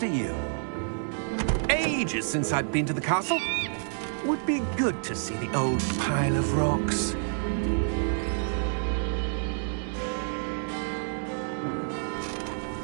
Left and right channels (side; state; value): left; silent; digital silence